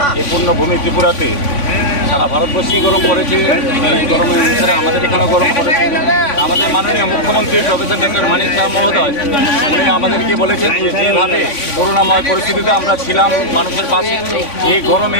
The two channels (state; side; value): late; right; 3.5 ms